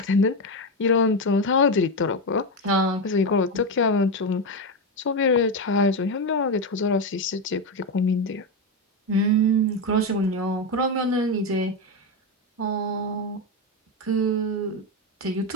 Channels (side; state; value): both; normal; correlation 0.11